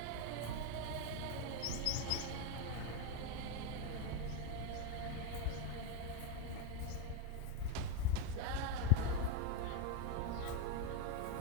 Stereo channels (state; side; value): different; both; correlation 0.02